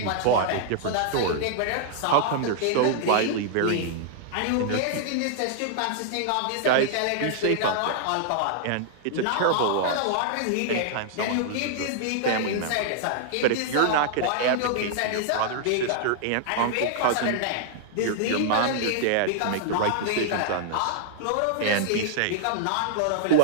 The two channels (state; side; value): different; both; correlation -0.01